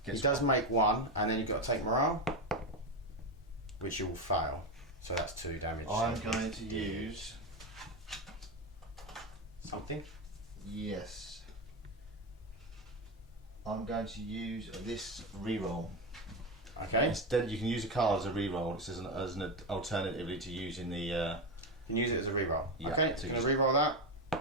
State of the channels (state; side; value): normal; both; correlation 0.13